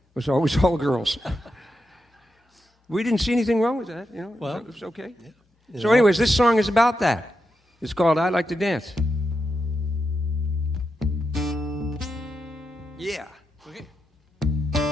was always all girls. We didn't see anything wrong with that. Well, it was okay. Yeah. So anyways, this song is about that. It's called I Like to Dance. Yeah. Okay.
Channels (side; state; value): both; normal; correlation 0.86